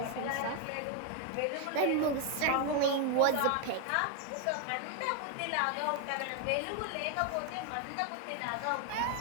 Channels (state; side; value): different; both; correlation 0.01